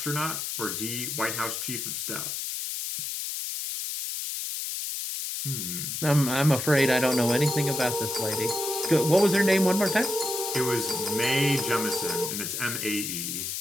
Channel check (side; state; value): left; noise; hiss, 4 dB below the sound